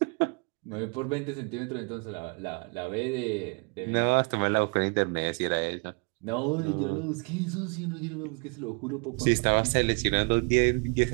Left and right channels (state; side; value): quieter; left; 34.3 dB